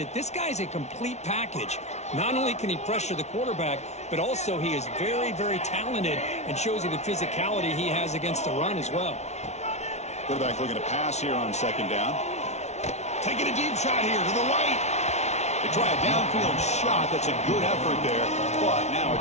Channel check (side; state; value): right; late; 0.32 ms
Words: this guy's a complete package. Not only can he pressure the quarterback, but also he is very, very talented and shows you the physicality he has against the run as well. Quarterback looking to pass here on second down. Taking a deep shot here to the right. They try a downfield shot. That's a good effort there, but now